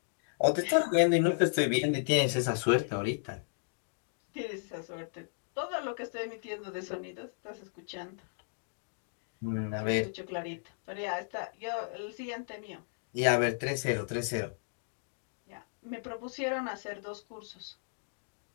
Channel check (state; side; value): silent; right; digital silence